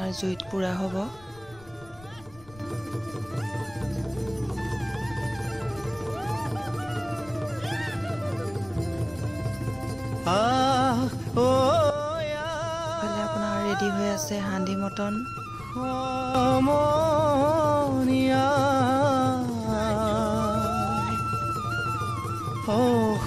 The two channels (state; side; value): noise; left; rumble, 23 dB below the sound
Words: জুইত পুৰা হ'ব रेडी हुए आसे हांडी मटन